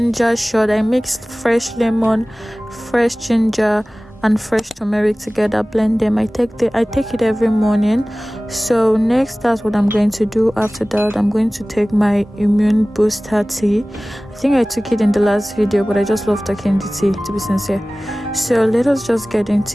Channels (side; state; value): both; normal; correlation 0.98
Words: shot. I mixed fresh lemon, fresh ginger, and fresh turmeric together, blend them. I take it every morning. So next, that's what I'm going to do. After that, I'm going to take my immune booster tea. I think I took it in the last video, but I just love taking the tea, to be sincere. So let us just get